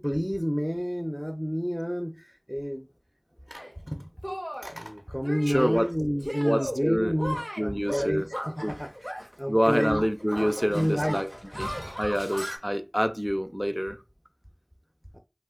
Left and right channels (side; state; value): both; identical; correlation 1.00